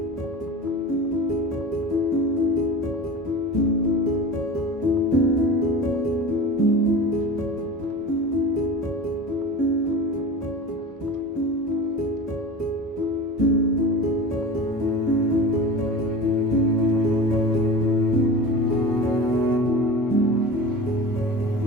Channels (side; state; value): both; normal; correlation 0.32